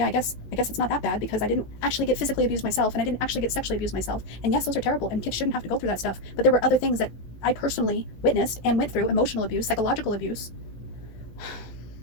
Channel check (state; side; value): late; right; 17 ms